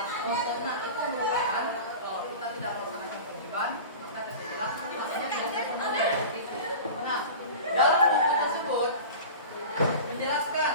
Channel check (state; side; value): inverted; both; correlation -0.34